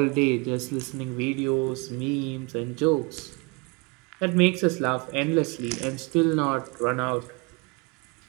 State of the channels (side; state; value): left; quieter; 29.8 dB